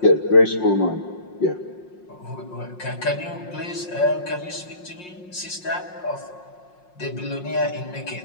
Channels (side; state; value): right; late; 5.6 ms